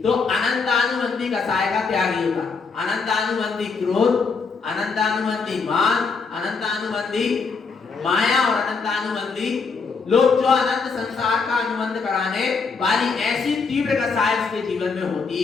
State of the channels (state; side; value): quieter; right; 4.9 dB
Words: तो अनंतानुबंधी कसाय का त्यागी होगा। अनंतानुबंधी क्रोध, अनंतानुबंधी मान, अनंतानुबंधी माया और अनंतानुबंधी लोग, जो अनंत संसार का अनुबंध कराने वाली ऐसी तीव्र कसाय उसके जीवन में होती